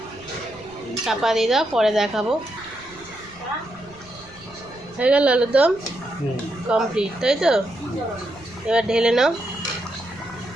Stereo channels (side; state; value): right; noise; rumble, 24 dB below the sound